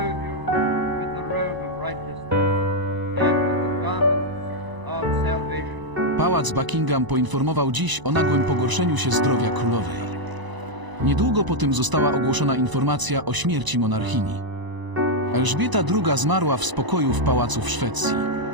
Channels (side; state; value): left; late; 1.0 ms